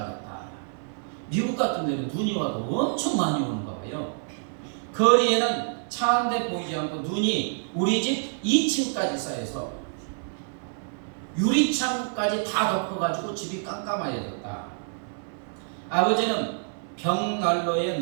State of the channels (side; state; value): left; silent; 60 dB below the other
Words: 미국 같은 데는 눈이 와도 엄청 많이 오는가 봐요. 거리에는 차 한 대 보이지 않고 눈이 우리 집 2층까지 쌓여서 유리창까지 다 덮어가지고 집이 깜깜해졌다. 아버지는 벽난로에